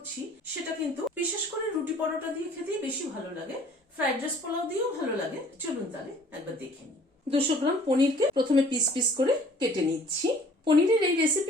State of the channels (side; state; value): both; normal; correlation 0.54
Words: সেটা কিন্তু বিশেষ করে রুটি পরোটা দিয়ে খেতেই বেশি ভালো লাগে, ফ্রাইড রাইস পোলাও দিয়েও ভালো লাগে। চলুন তাহলে একবার দেখে নিই। 200 গ্রাম পনিরকে প্রথমে পিস পিস করে কেটে নিচ্ছি। পনিরের এই